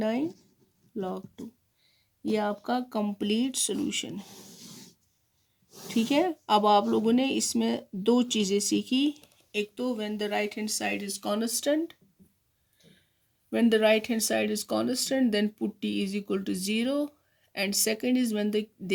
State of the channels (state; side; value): identical; both; correlation 1.00